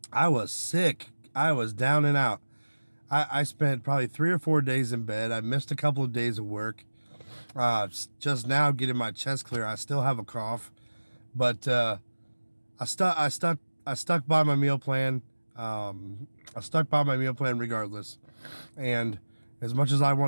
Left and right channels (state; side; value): inverted; both; correlation -1.00